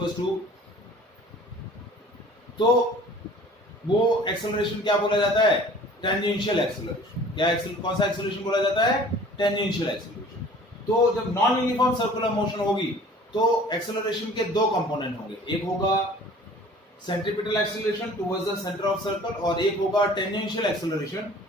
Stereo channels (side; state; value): both; normal; correlation 0.48